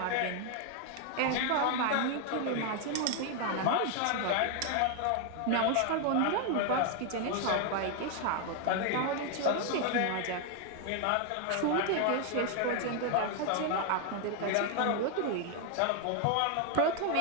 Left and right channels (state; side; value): different; both; correlation 0.01